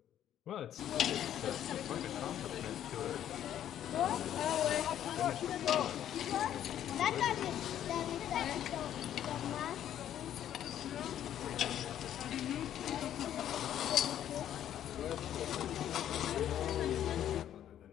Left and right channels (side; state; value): right; quieter; 10.9 dB